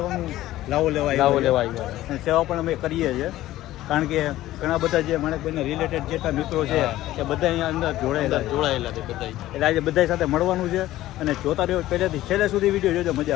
લાવો લેવા આવ્યા અને સેવા પણ અમે કરીએ છીએ, કારણ કે ઘણા બધા જે માણેકભાઈના રિલેટેડ જેટલા મિત્રો છે એ બધા અહીંયા અંદર જોડાયેલા છે બધા. એટલે આજે બધા સાથે મળવાનું છે અને જોતા રહ્યો પહેલેથી છેલ્લે સુધી વિડીયો જોજો,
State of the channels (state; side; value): quieter; right; 15.2 dB